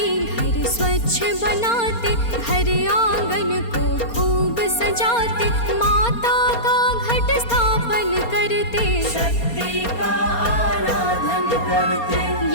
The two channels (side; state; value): right; late; 4.3 ms